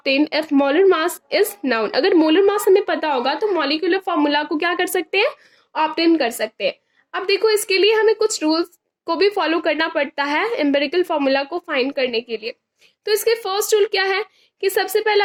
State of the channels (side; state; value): both; identical; correlation 1.00